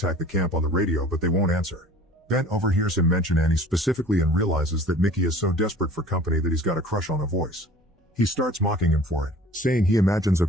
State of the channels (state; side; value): normal; both; correlation 0.46